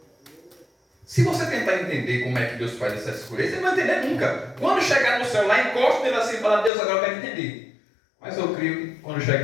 Se você tentar entender como é que Deus faz essa escolha, você não vai entender nunca. Quando chegar no céu lá, encosta nele assim e fala, Deus, agora eu quero entender. Mas eu creio que quando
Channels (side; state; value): right; drops out; at 6.7 s